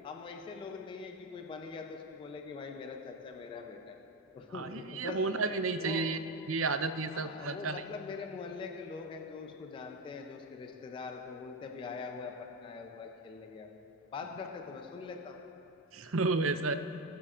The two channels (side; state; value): both; normal; correlation 0.13